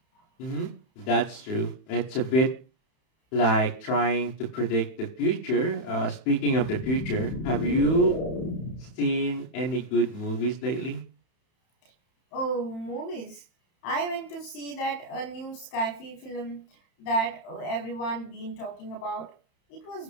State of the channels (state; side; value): late; right; 31 ms